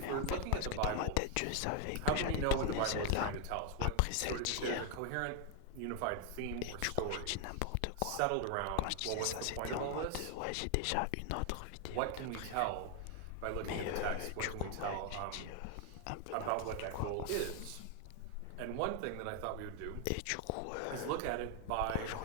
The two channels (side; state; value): both; different; correlation 0.01